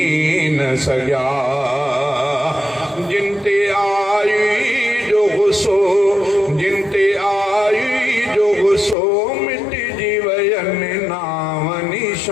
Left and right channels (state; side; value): drops out; right; at 9.0 s